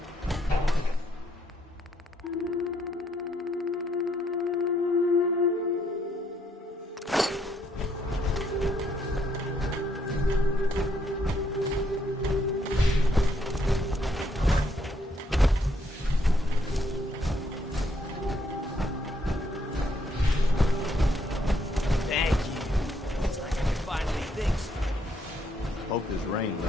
Hope this rain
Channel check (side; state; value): both; normal; correlation 0.72